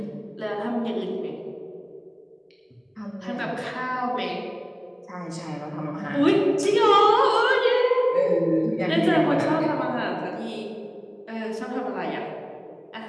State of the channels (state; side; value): identical; both; correlation 1.00